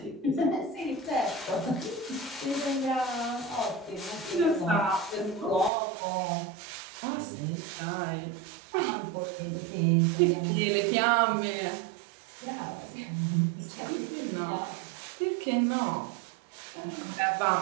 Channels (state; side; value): drops out; left; at 5.7 s